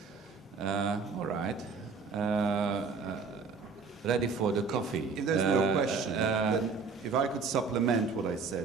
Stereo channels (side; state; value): left; quieter; 4.9 dB